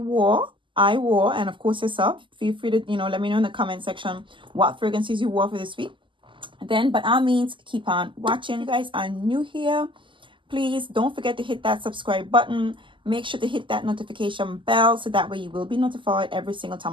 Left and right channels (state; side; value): late; left; 0.24 ms